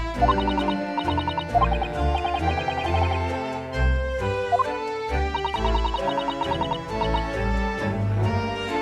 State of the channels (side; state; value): both; identical; correlation 1.00